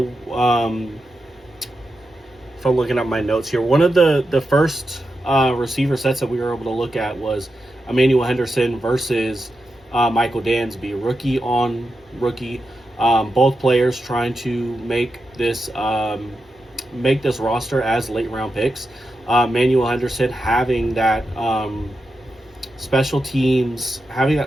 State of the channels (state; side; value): normal; both; correlation 0.88